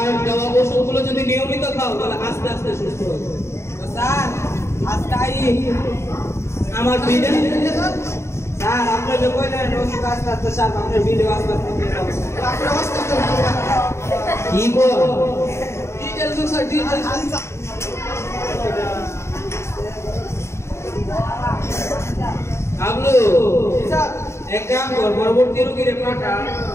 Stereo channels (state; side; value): late; right; 0.13 ms